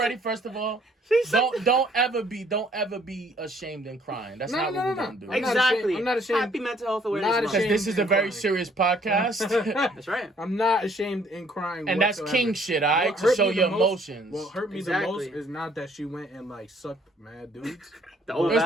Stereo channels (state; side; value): normal; both; correlation 0.62